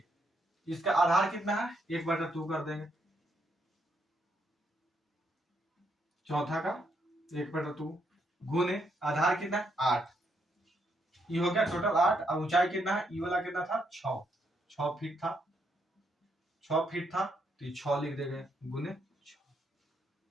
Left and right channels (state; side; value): normal; both; correlation 0.76